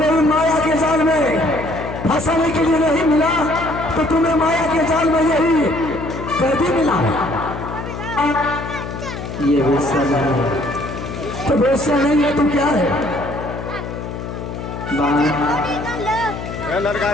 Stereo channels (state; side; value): noise; left; hum, 8 dB below the sound